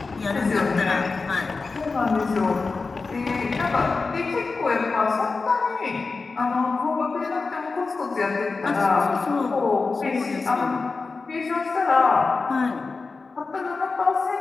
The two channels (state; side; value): quieter; right; 4.1 dB